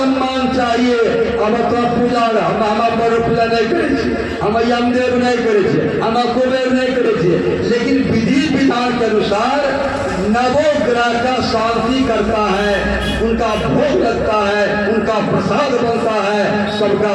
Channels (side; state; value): both; identical; correlation 1.00